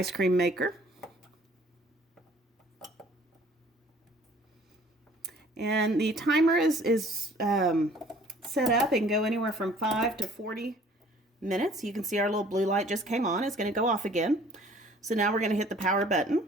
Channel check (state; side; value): normal; both; correlation 0.54